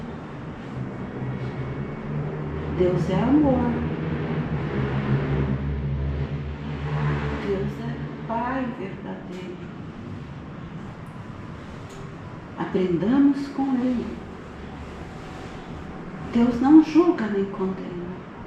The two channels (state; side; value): identical; both; correlation 1.00